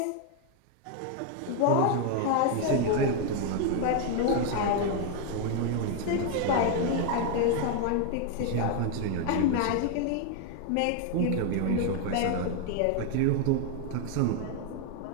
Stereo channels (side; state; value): both; different; correlation 0.01